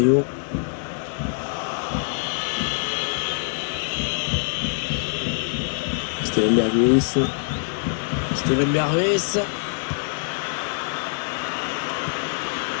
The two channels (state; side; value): silent; right; digital silence